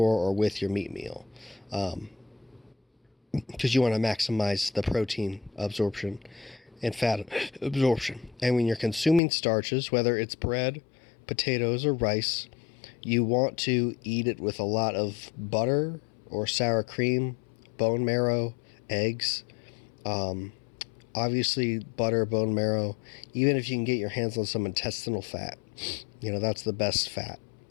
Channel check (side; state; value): right; drops out; at 9.2 s